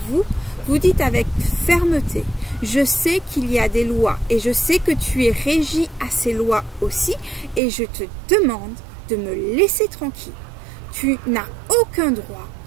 vous, vous dites avec fermeté, je sais qu'il y a des lois et je sais que tu es régi à ces lois aussi et je te demande de me laisser tranquille. Tu n'as aucun droit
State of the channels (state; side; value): drops out; left; at 7.6 s